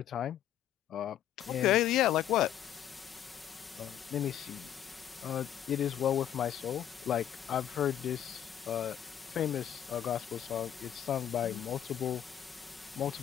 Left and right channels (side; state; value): right; quieter; 10.6 dB